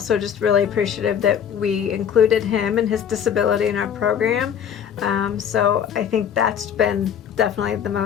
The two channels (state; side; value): quieter; right; 8.4 dB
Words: just really appreciative that we included him and his disability in our program. So I think that's been definitely the